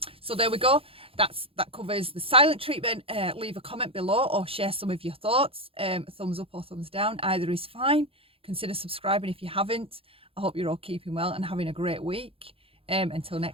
So there we go. That covers the silent treatment. Leave a comment below or share some of your thoughts. Thumbs up or thumbs down. Either is fine. Consider subscribing if you haven't. I hope you're all keeping well and having a great week. Until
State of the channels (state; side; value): late; left; 0.27 ms